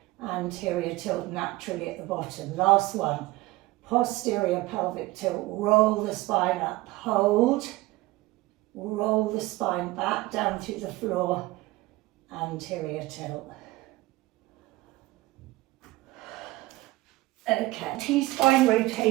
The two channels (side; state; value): left; quieter; 19.4 dB